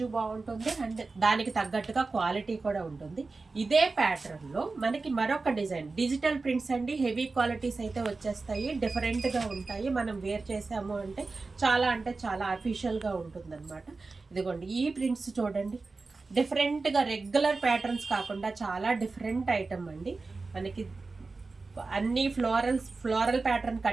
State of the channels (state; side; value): quieter; left; 3.9 dB